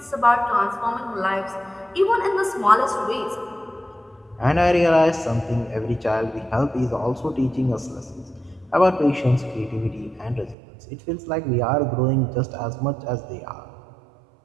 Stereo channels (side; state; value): left; drops out; at 10.6 s